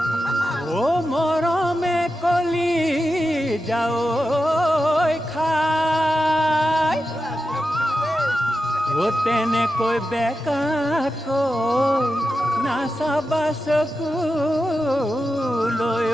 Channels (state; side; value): normal; both; correlation 0.90